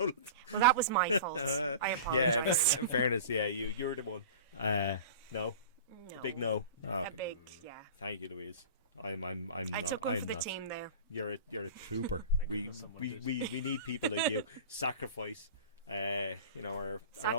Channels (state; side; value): inverted; both; correlation -0.36